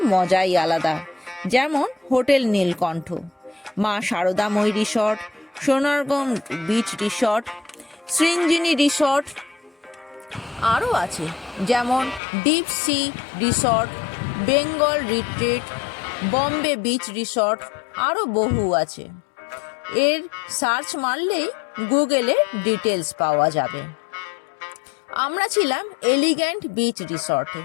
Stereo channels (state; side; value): drops out; right; at 12.2 s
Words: মজাই আলাদা। যেমন hotel Nilkantha, Maa Saradamayee resort, Sonargaon beach resort, Srinjini resort. আরও আছে যেমন deep sea resort, Bengal retreat, Bombay beach resort, আরও বহু আছে। এর সার্চ মারলেই গুগলে ডিটেলস পাওয়া যাবে। আমরা ছিলাম এলিগ্যান্ট বিচ রিসর্টে।